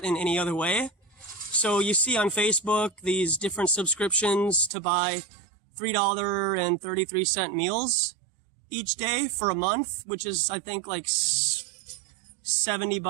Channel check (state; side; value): drops out; left; at 4.7 s